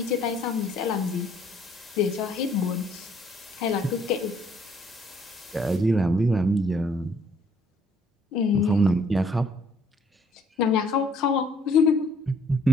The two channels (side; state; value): both; normal; correlation 0.63